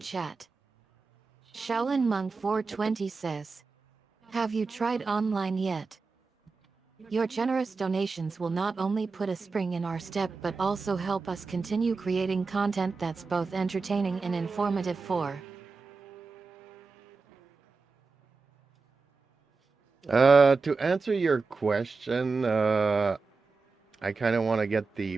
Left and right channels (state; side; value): quieter; left; 4.4 dB